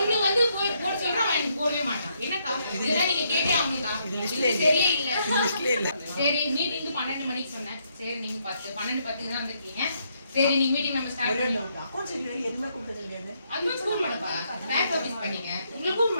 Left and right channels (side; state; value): both; inverted; correlation -0.74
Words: வந்து போட சொல்றேன் அவன் எனக்கு போடவே மாட்டான் என்னக்கா இதெல்லாம் நீங்க கேட்டே ஆகணும்க்கா இது சரியே இல்ல சரி மீட்டிங் 12 மணிக்கு சொன்னேன் சரி நீங்க 12:10 தான் வந்திருக்கீங்க சரி நீங்க மீட்டிங் நம்ம ஸ்டார்ட் பண்ணலாம் அக்கவுண்ட்ஸ் இல்ல எதுமே கொடுத்தது இல்லையா அட்வான்ஸ் கூப்பிட மாட்டப்பா பேக் ஆபீஸ் பண்ணீங்க உங்களை கூப்பிட